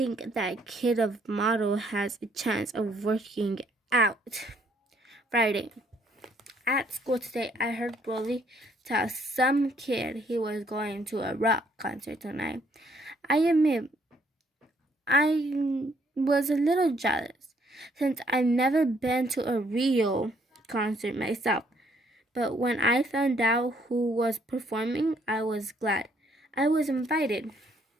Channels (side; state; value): both; normal; correlation 0.67